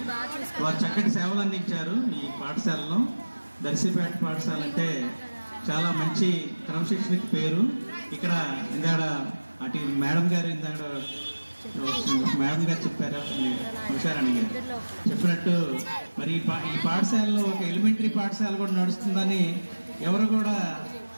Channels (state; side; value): inverted; both; correlation -1.00